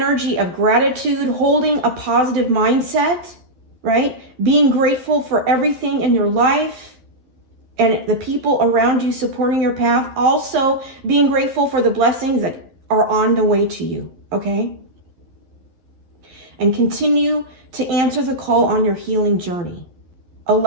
of gratitude, holding a positive mindset, right? Being grateful for everything in your life and the people around you supporting your path. Also being grateful for the blessings that are on the way to you, okay? And continue to answer the call on your healing journey,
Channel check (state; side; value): late; left; 12 ms